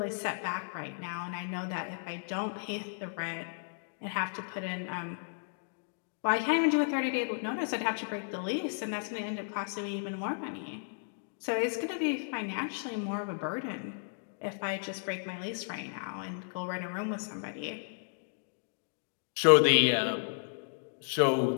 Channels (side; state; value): right; silent; digital silence